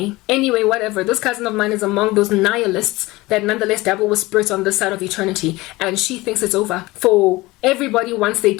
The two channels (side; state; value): right; quieter; 20.6 dB